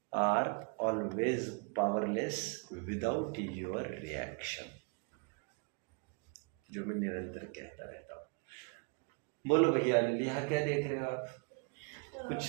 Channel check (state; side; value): quieter; left; 34.9 dB